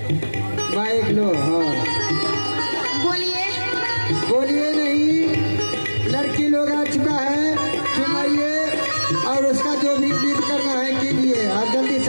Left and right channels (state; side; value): inverted; both; correlation -1.00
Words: बाइक लो। हाँ बोलिए। बोलिए नहीं, लड़की लोग आ चुका है, चुमाइए और उसका जो भी गीत करना है कीजिए और जल्दी